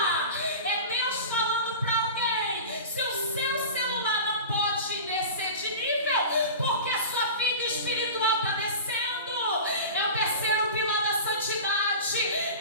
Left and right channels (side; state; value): both; inverted; correlation -0.32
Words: É Deus falando para alguém: se o seu celular não pode descer de nível porque a sua vida espiritual está descendo, é o terceiro pilar da santidade,